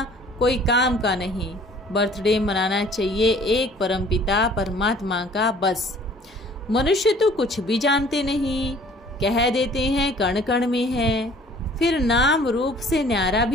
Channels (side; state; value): both; normal; correlation 0.53